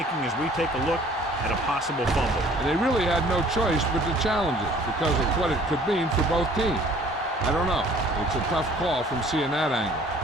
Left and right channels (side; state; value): both; normal; correlation 0.54